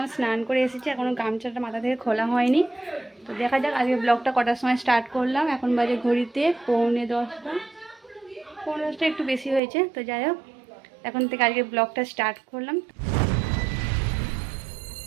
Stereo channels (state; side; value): drops out; left; at 9.6 s